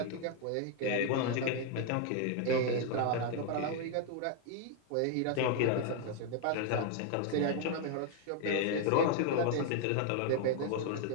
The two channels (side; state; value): both; different; correlation 0.00